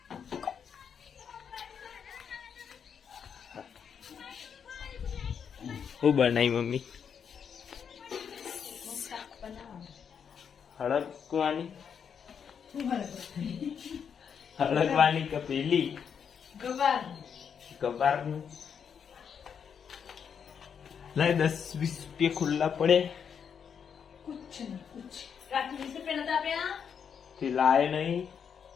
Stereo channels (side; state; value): right; quieter; 7.3 dB